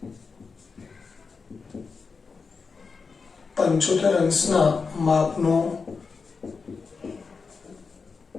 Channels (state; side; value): quieter; right; 4.9 dB